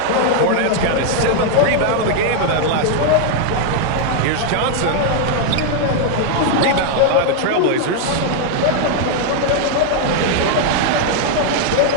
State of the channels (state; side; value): different; both; correlation 0.00